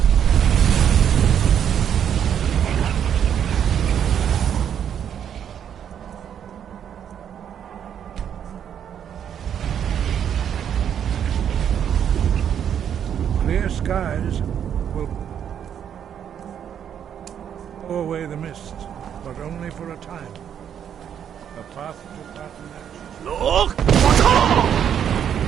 Clear skies will blow away the mists, but only for a time. The path to Pathfinder. Look!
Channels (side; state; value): left; quieter; 8.9 dB